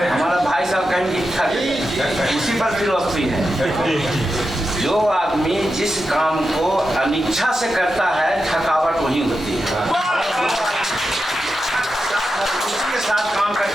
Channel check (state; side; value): normal; both; correlation 0.89